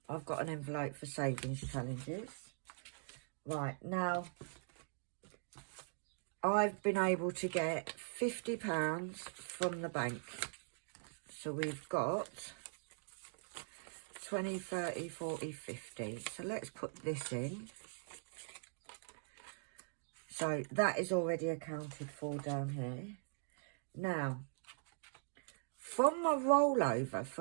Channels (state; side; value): silent; left; digital silence